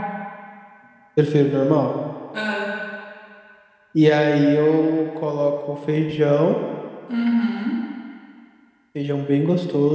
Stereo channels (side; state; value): both; identical; correlation 1.00